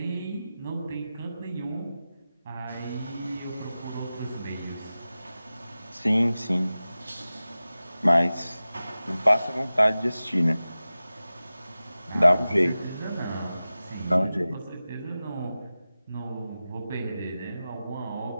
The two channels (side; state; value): both; inverted; correlation -0.95